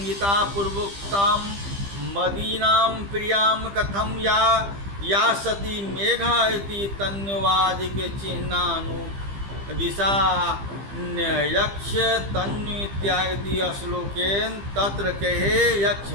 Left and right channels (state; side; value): late; left; 15 ms